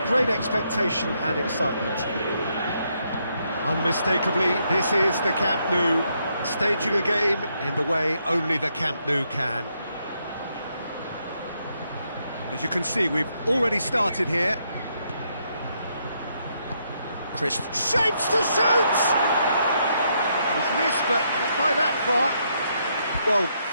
great expectation and excitement. Unmistakably, this is the Camp Nou, staging a game in the way only the Camp Nou can. And as you can see, we've already started here. Chris shapes to shoot! He's missed, but not by that far. Well,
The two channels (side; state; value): both; inverted; correlation -0.76